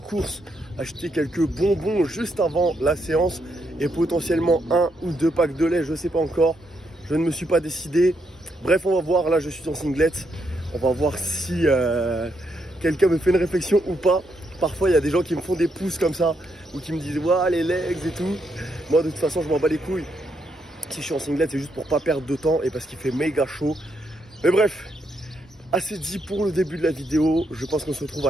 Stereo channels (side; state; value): both; normal; correlation 0.78